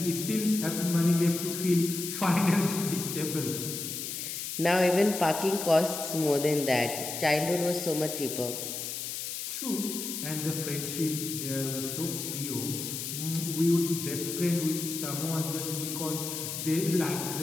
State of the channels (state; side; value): noise; left; hiss, 5 dB below the sound